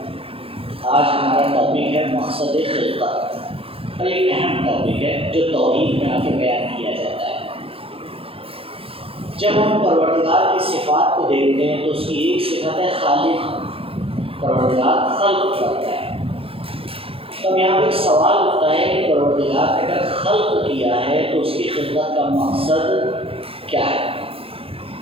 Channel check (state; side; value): late; left; 0.27 ms